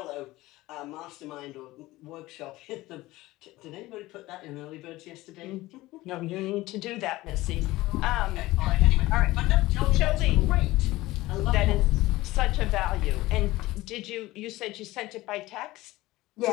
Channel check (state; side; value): quieter; right; 18.4 dB